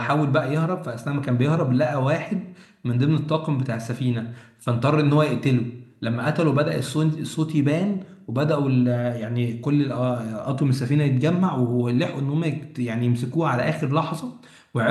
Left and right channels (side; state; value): both; identical; correlation 1.00